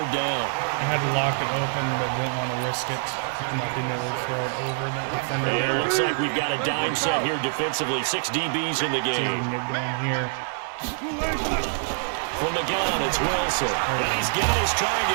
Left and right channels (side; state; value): left; silent; digital silence